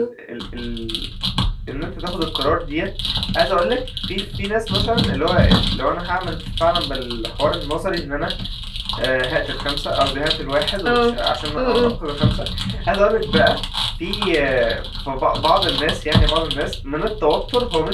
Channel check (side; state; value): both; identical; correlation 1.00